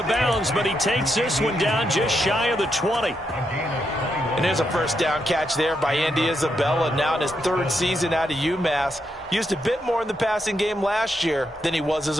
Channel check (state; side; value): normal; both; correlation 0.81